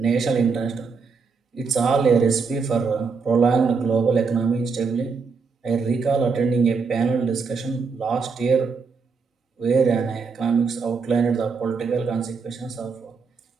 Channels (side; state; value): left; quieter; 5.0 dB